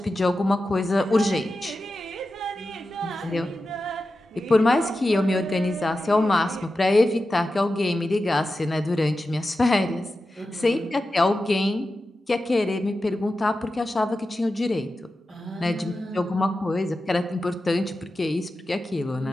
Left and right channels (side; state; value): both; normal; correlation 0.92